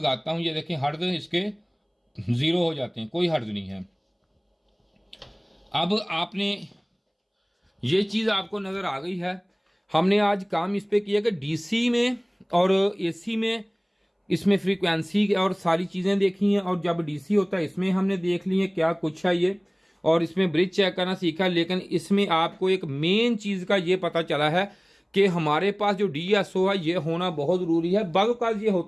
हूँ, ये देखें हर्ट्ज इसके 0 हो जाते हैं, कोई हर्ट्ज नहीं है। अब आपने ये चीज़ आपको नज़र आ गई है। हमने आज काम इस पे किया कि डीसी में और एसी में इसमें फ्रीक्वेंसी और सारी चीज़ें देखी हैं, और जब डीसी होता है इसमें हमने देख ली है क्या कुछ है ये, और इसमें ब्रिज चेक करना सीखा। लेकिन इसमें आपको एक मेन चीज़ का ये पता चला है कि हमारे पास जो डीएसओ है ये होना बहुत ज़रूरी है। बाज़ ये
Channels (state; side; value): identical; both; correlation 1.00